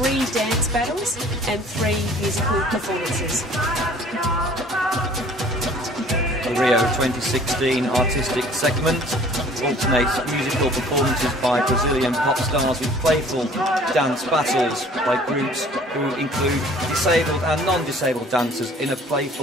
dance battles and 3 musical performances. The Rio 2016 artistic segment alternates musical performances by Brazilian pop stars with playful dance battles by groups who include disabled and non-disabled dancers in a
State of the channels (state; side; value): normal; both; correlation 0.52